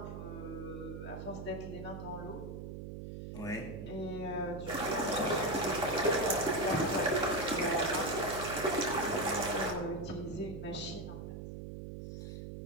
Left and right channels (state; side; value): noise; right; hum, 8 dB below the sound